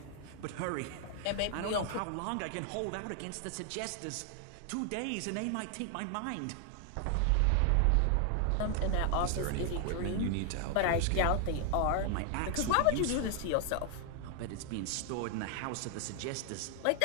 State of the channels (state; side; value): different; both; correlation 0.00